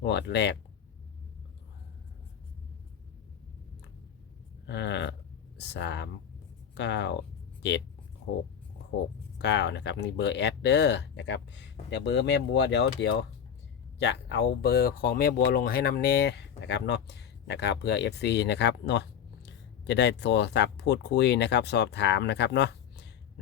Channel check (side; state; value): right; quieter; 8.5 dB